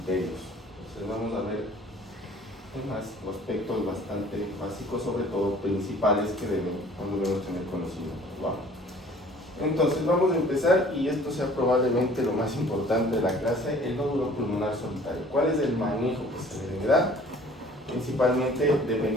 Entonces vamos a ver temas o aspectos bastante básicos, sobre todo principales, que debemos tener conocimiento. ¿Va? Entonces vamos a empezar, y esto sea probablemente lo más importante de la clase, el nódulo pulmonar solitario. ¿Cuál es el manejo que se le debe dar? Principalmente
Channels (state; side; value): normal; both; correlation 0.52